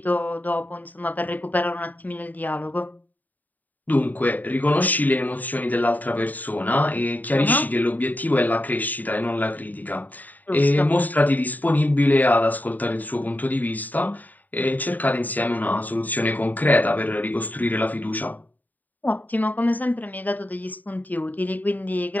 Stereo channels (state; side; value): late; right; 0.083 ms